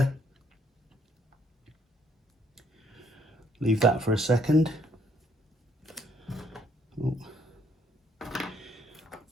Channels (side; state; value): both; normal; correlation 0.67